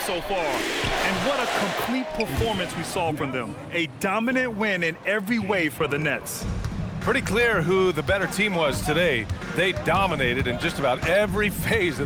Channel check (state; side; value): identical; both; correlation 1.00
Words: far. And what a complete performance we saw from them. A dominant win in every way for the Nets. Pretty clear who the better team was today. They dominated in just about every phase